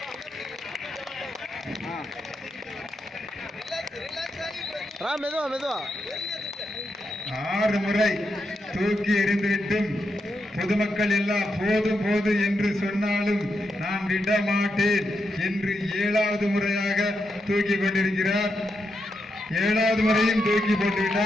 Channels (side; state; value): both; normal; correlation 0.84